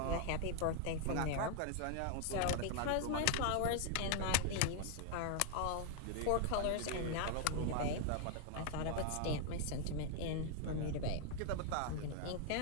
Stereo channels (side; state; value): both; different; correlation 0.00